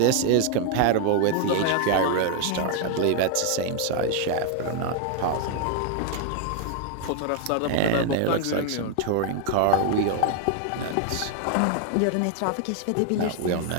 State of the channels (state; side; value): different; both; correlation 0.00